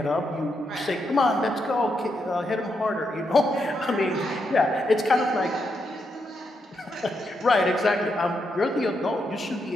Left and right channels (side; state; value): both; normal; correlation 0.81